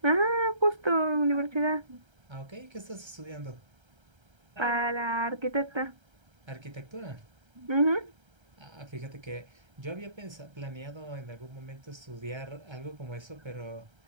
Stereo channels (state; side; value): late; left; 1.3 ms